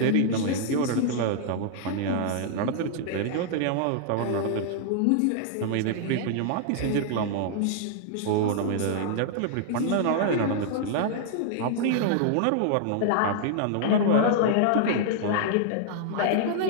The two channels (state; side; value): different; both; correlation -0.01